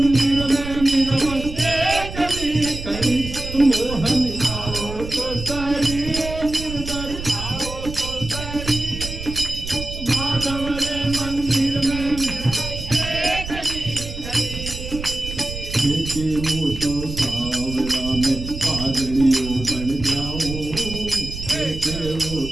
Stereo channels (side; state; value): right; noise; rumble, 9 dB below the sound